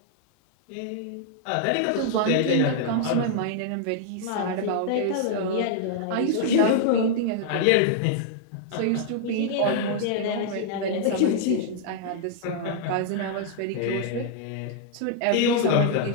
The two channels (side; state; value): both; different; correlation -0.01